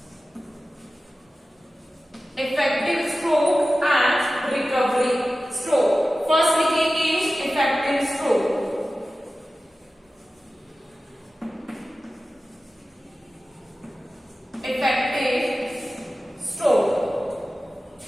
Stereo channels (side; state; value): both; normal; correlation 0.95